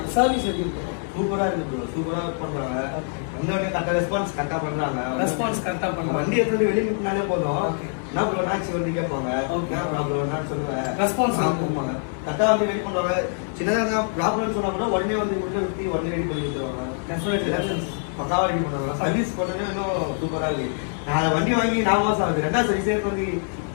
சர்வீஸ் எப்படி இருக்கு? சூப்பரா இருக்கு ப்ரோ, சூப்பரா ஒர்க் பண்றாங்க. வந்தவங்க கரெக்டா ரெஸ்பான்ஸ் கரெக்டா பண்றாங்க. வண்டி எடுத்து வெளியே நின்னாலே போதும். என்ன ப்ரோ நாச்சு வந்து கேட்பாங்க, என்ன ப்ராப்ளம் நான் சொல்லுவேன். ரெஸ்பான்ஸ் பண்ணுவாங்க, கரெக்டா வந்து வெயிட் பண்ணுவாங்க. சின்னதாக ப்ராப்ளம் சொன்னா கூட உடனே வந்து உள்ள விட்டு உடனே ரெடி பண்ணி கொடுத்துருவாங்க. பக்காவா ரெடி பண்ணுவாங்க. சர்வீஸ் பண்ணவே இன்னும் சூப்பரா இருக்கு. நான் வண்டி வாங்கி 4 மாசம் ஆகுது. 2வது சர்வீஸே வந்து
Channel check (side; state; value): right; silent; 62 dB below the other